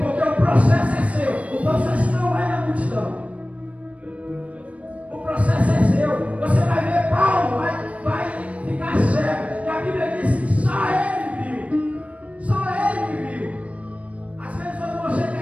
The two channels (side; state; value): left; late; 0.065 ms